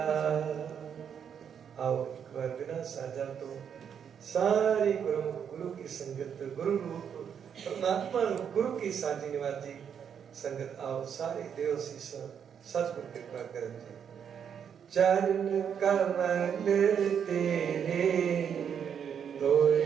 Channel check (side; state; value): left; quieter; 7.9 dB